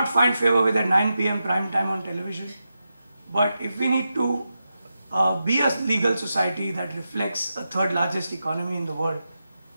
find favor with at 9 p.m. prime time on television. But if we need to be a legal society that reflects a third largest economy in the world,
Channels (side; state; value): both; inverted; correlation -0.89